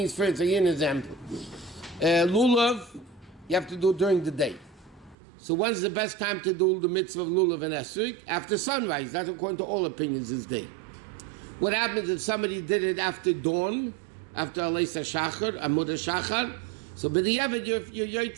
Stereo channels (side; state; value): left; drops out; at 5.2 s